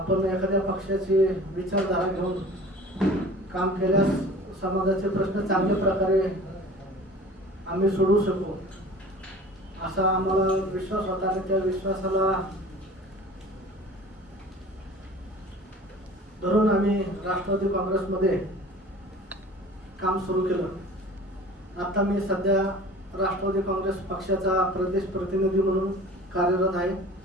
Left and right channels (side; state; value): both; normal; correlation 0.43